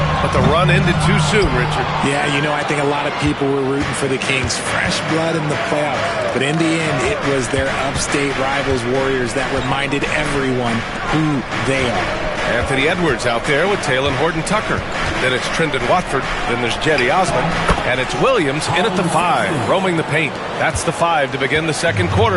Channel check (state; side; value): identical; both; correlation 1.00